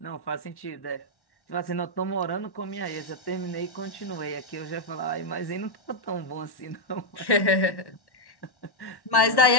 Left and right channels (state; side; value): late; right; 1.1 ms